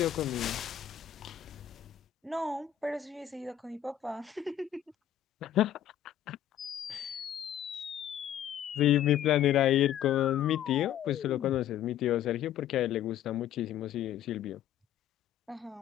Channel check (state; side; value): quieter; right; 11.0 dB